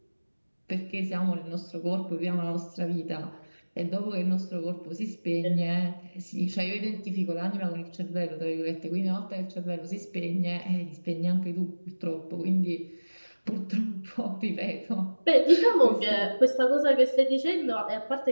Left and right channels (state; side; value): inverted; both; correlation -1.00